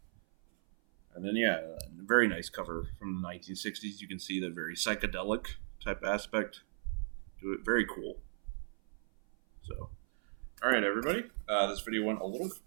And then, yeah, a very nice cover from the 1960s. You can see the very psychedelic type aspect to it. Very cool. So, all right, everybody. This video went a little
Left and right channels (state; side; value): silent; left; 53 dB below the other